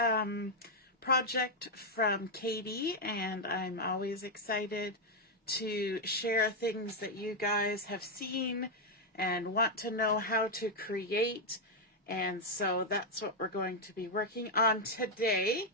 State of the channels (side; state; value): both; normal; correlation 0.01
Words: project from Kady, and I'm always excited to share things that you guys have seen and want to know how to create. And so that's what we're going to be working on today.